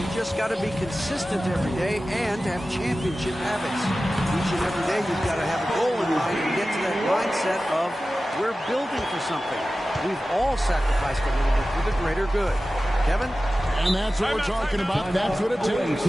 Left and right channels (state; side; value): normal; both; correlation 0.95